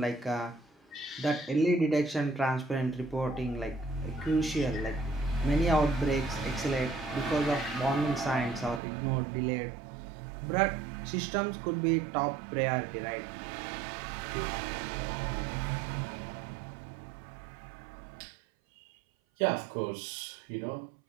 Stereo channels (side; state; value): left; drops out; at 8.8 s